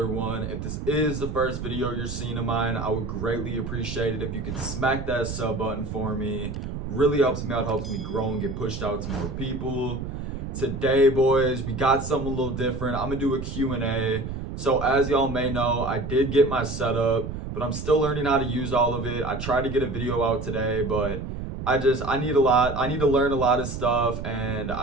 one. If this is the first video you're seeing of mine, I would greatly appreciate it if you could smack that sub button for me. Really helps me out, helps me grow and get pushed out to more people. Today, boys, we got something a little different. I'm gonna do a Q&A. So as y'all may know, I did get my setup, but I'm still learning how to use all of it. I tried to get a video out today, but I need to learn a lot of stuff, and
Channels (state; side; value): noise; right; rumble, 6 dB below the sound